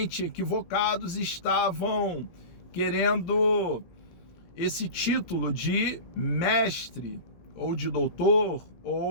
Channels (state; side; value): late; right; 17 ms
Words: equivocados, estavam querendo esse título de mestre, ou de doutor,